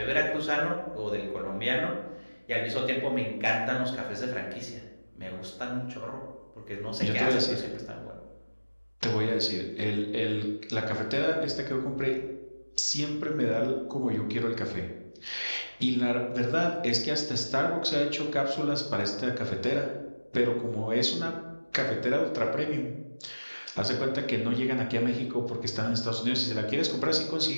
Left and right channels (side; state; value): both; inverted; correlation -1.00